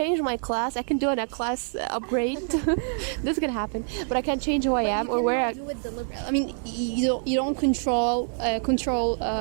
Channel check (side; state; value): left; silent; 60 dB below the other